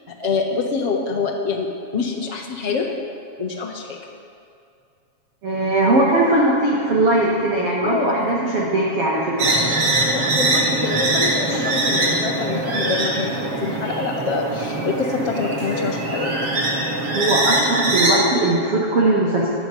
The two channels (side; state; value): left; late; 7.3 ms